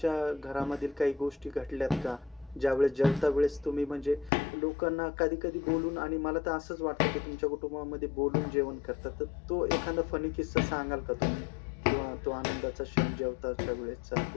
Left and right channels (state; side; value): drops out; right; at 4.3 s